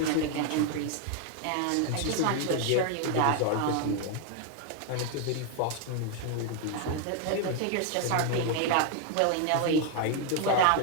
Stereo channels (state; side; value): different; both; correlation 0.00